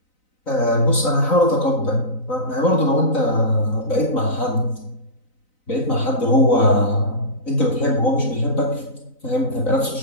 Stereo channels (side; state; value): right; late; 3.9 ms